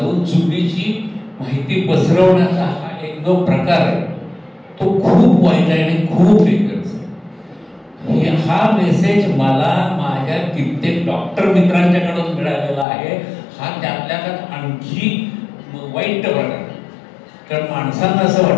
चुकीची माहिती पसरवण्याचा हा एक जो प्रकार आहे तो खूप वाईट आहे आणि खूप डेंजरस आहे. हा मेसेज मला माझ्या कित्येक डॉक्टर मित्रांच्याकडून मिळालेला आहे. हा त्यातल्या त्यात आणखी वाईट प्रकार आहे. कारण माणसांना असं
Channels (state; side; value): drops out; right; at 12.9 s